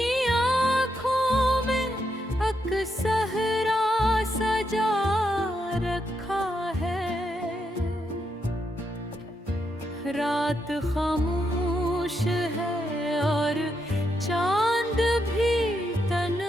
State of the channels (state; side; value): normal; both; correlation 0.81